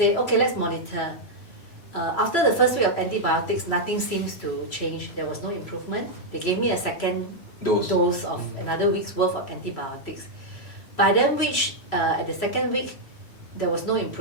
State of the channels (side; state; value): right; late; 3.0 ms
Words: okay, let's monitor. After the first week of antibiotics, nothing seems to change. There was no improvement. They gave me a second dose of another week's worth of antibiotics. By then, at the second week, there was no